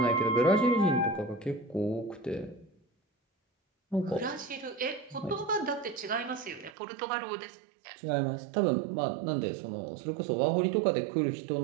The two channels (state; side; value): drops out; left; at 6.8 s